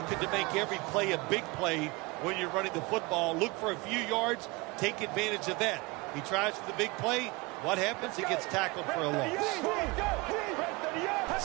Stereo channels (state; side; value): quieter; left; 25.1 dB